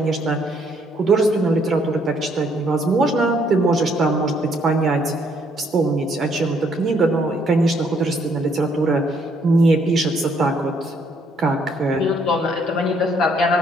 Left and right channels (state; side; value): normal; both; correlation 0.68